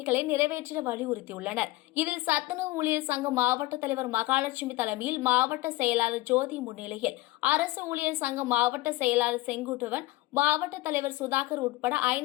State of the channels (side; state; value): right; quieter; 18.8 dB